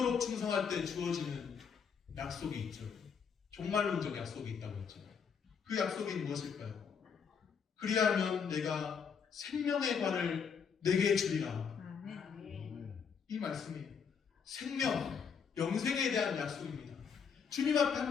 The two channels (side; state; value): right; quieter; 6.5 dB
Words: 충성할 때 주어지는 약속이 있죠. 종말론적 약속이 있다고 했죠. 그 약속이 무엇일까요? 그리하면 내가 생명의 관을 내게 주리라. 이 말씀이에요. 생명, 영생에 대한 약속입니다. 주님 앞에